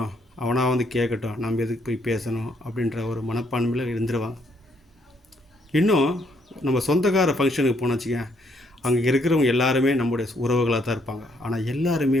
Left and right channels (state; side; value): normal; both; correlation 0.71